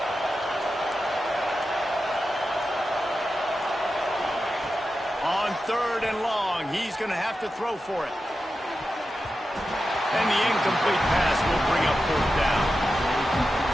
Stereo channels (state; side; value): normal; both; correlation 0.91